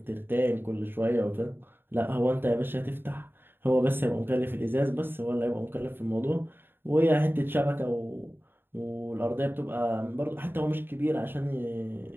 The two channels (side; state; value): left; late; 0.10 ms